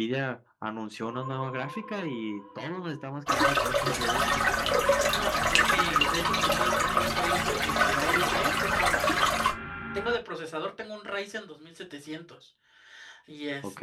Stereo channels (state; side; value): identical; both; correlation 1.00